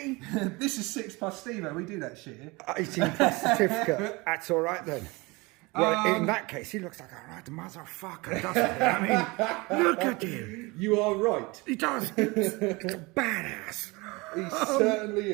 This is 6+ Stevo, we do that shit here. 18 plus certificate. That's all right then. Well, in that case, he looks like a right motherfucker, doesn't he? I mean, look at him. You are right. He does. It's a badass. He certainly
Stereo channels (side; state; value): left; quieter; 24.6 dB